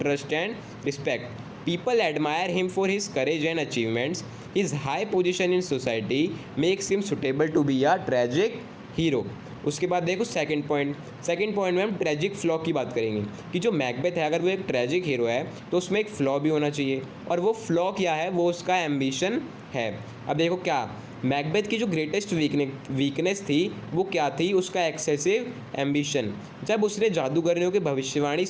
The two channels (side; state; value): both; identical; correlation 1.00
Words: trust and respect. People admire him for his courage and achievements. His high position in society makes him suitable to be a tragic hero. उसके बाद देखो second point में हम tragic flaw की बात करेंगे कि जो मैकबेथ है अगर वो एक ट्रेजिक हीरो है तो उसमें एक फ्लॉ भी होना चाहिए, और वो फ्लॉ क्या है? वो उसका एम्बिशन है। अब देखो क्या मैकबेथ की जो ग्रेटेस्ट वीकनेस थी वो क्या थी? उसका एक्सेसिव एम्बिशन। जब उसने जादूगरनियों की भविष्यवाणी